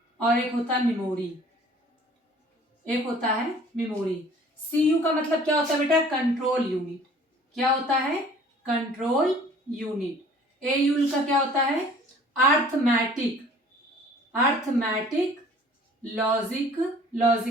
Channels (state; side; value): normal; both; correlation 0.51